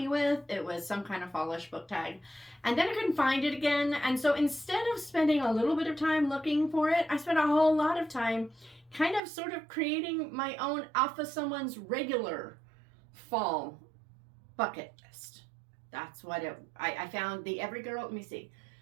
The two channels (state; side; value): drops out; left; at 9.2 s